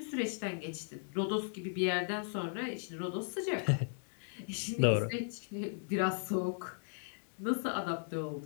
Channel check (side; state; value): right; silent; digital silence